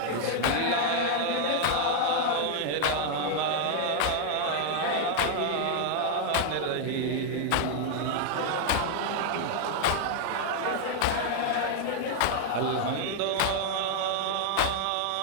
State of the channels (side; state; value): both; different; correlation 0.00